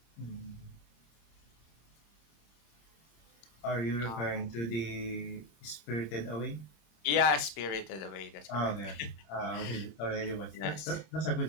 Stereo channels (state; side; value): late; right; 26 ms